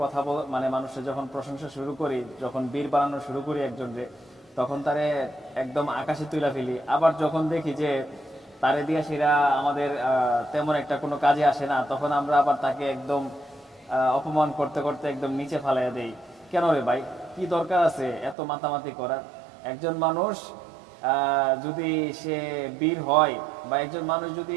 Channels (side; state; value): left; drops out; at 18.4 s